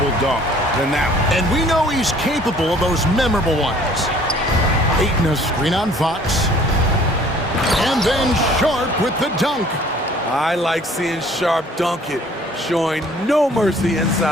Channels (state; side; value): normal; both; correlation 0.54